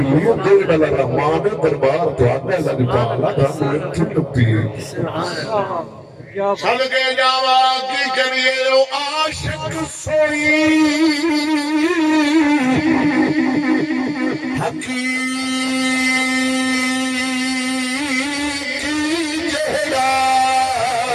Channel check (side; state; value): both; identical; correlation 1.00